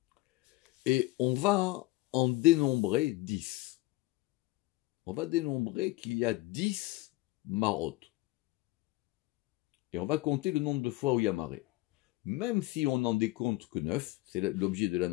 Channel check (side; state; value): right; quieter; 19.6 dB